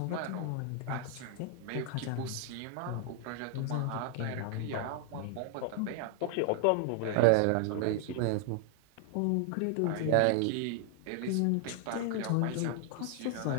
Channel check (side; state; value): both; different; correlation 0.00